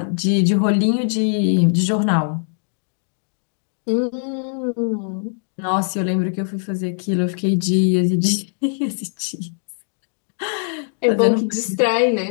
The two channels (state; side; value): silent; right; digital silence